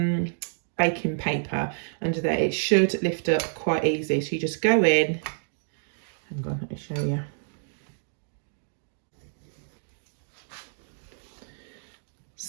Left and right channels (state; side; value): silent; left; digital silence